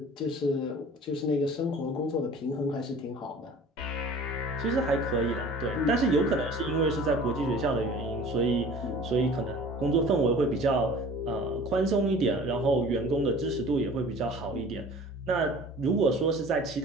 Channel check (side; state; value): both; normal; correlation 0.45